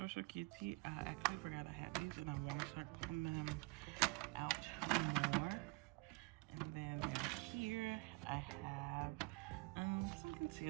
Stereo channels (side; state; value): left; quieter; 25.5 dB